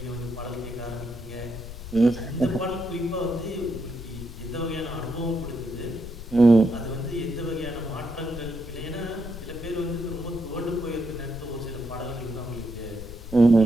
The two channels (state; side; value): noise; left; rumble, 11 dB below the sound